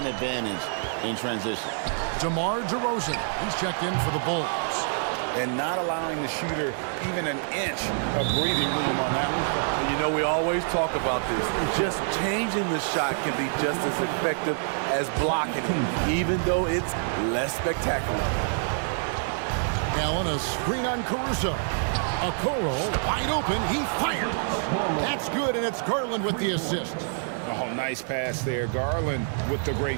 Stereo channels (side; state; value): left; silent; 60 dB below the other